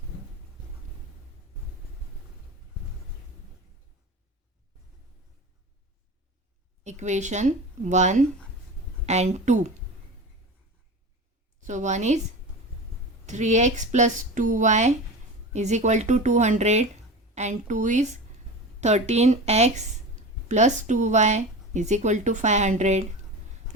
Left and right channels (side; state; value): both; normal; correlation 0.30